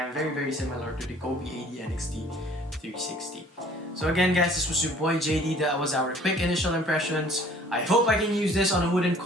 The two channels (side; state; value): both; normal; correlation 0.54